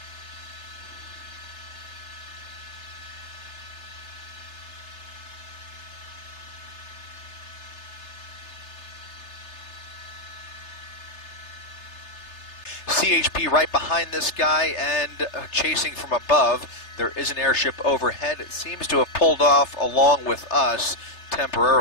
CHP right behind this guy and chasing from above. There is an airship overhead. It seems to have pulled off along with us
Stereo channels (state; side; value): late; right; 3.3 ms